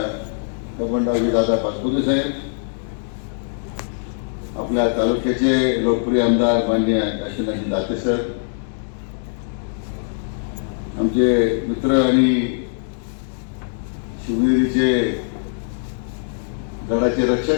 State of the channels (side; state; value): right; silent; digital silence